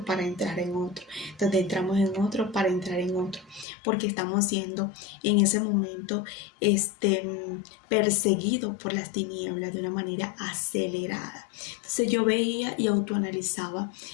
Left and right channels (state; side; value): drops out; right; at 3.7 s